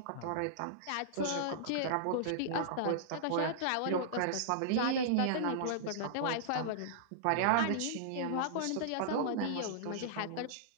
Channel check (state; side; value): different; both; correlation -0.02